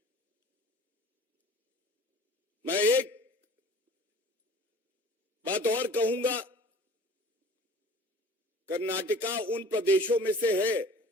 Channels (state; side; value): normal; both; correlation 0.46